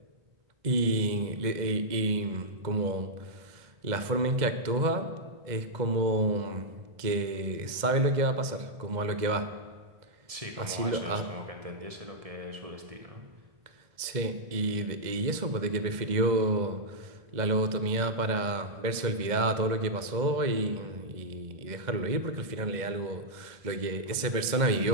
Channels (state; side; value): late; left; 2.0 ms